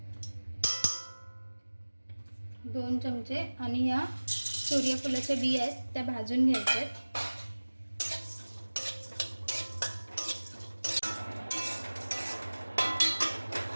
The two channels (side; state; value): both; inverted; correlation -1.00